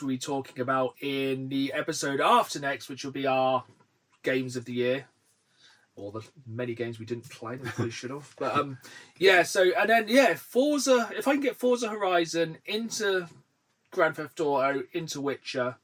be talking about in the episode after next, which will be our games of the year. Or the many games we didn't play that we probably should have. But Forza, if I can get Forza Horizon into Grand Theft Auto, into Witcher,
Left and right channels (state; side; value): identical; both; correlation 1.00